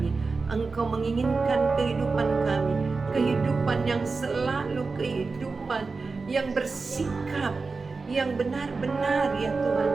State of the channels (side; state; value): left; quieter; 4.2 dB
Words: Engkau menginginkan kehidupan kami, kehidupan yang selalu kehidupan yang bersikap, yang benar-benar ya Tuhan,